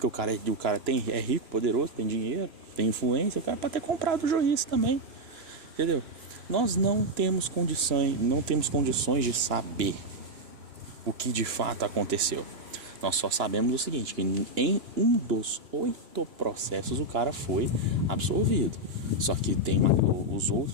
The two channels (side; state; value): left; late; 3.0 ms